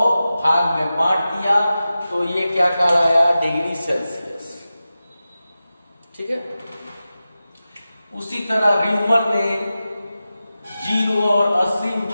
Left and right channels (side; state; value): both; inverted; correlation -0.94